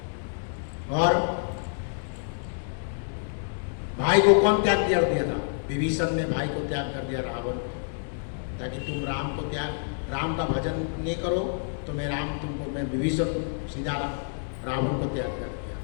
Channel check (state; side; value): silent; right; digital silence